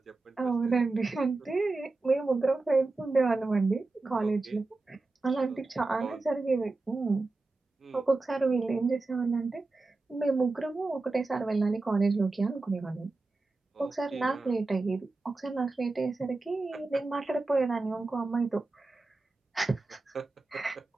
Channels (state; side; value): quieter; left; 3.4 dB